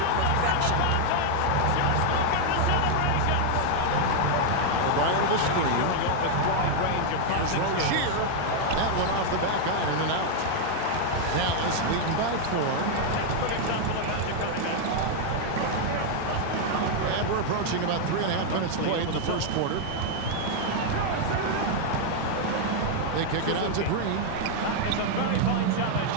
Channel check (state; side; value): different; both; correlation 0.00